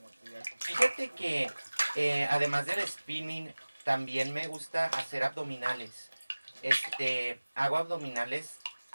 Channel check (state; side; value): inverted; both; correlation -1.00